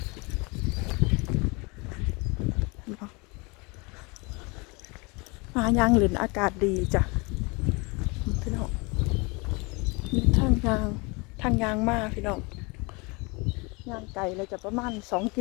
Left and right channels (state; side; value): quieter; right; 28.3 dB